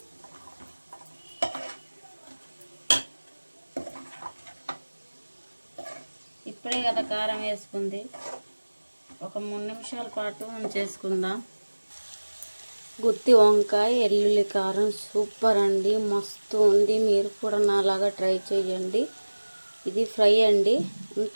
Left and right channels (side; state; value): both; inverted; correlation -1.00